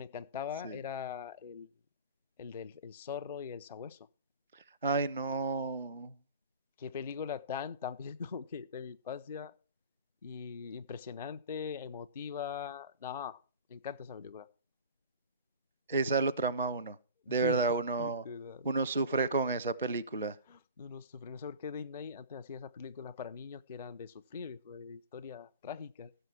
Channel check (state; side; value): inverted; both; correlation -0.37